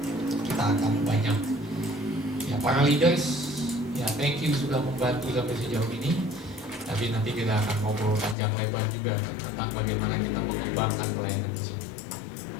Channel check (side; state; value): right; drops out; at 8.3 s